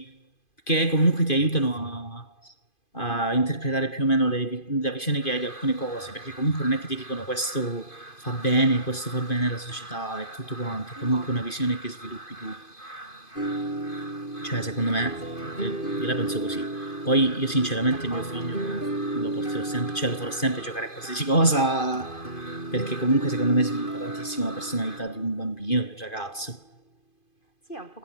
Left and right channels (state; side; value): late; right; 2.5 ms